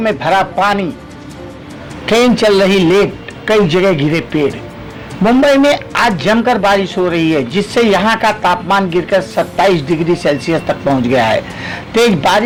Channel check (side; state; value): both; identical; correlation 1.00